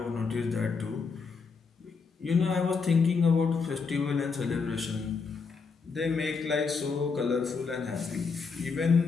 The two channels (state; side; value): quieter; right; 5.0 dB